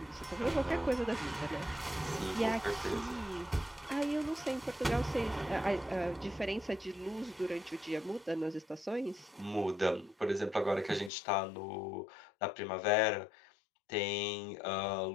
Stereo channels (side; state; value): right; drops out; at 11.1 s